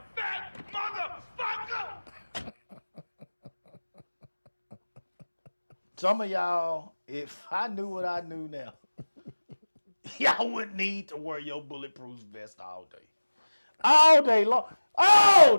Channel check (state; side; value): inverted; both; correlation -1.00